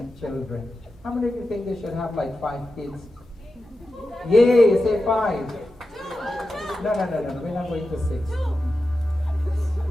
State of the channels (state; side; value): normal; both; correlation 0.91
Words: children. How many of you think they should have like 5 kids? Yay, say 5. No, we're not going to 6.